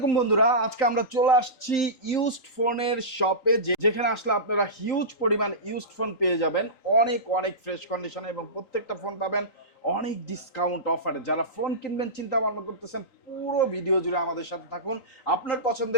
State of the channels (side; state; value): right; late; 3.9 ms